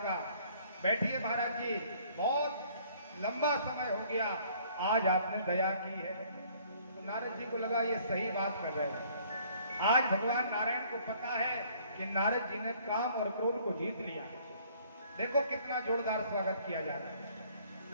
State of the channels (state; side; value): inverted; both; correlation -0.59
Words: बैठिए महाराज जी, बहुत लंबा समय हो गया, आज आपने दया की है। तो नारद जी को लगा ये सही बात कर रहे हैं। आज भगवान नारायण को पता है कि नारद जी ने काम और क्रोध को जीत लिया। देखो कितना जोरदार स्वागत किया जा रहा है।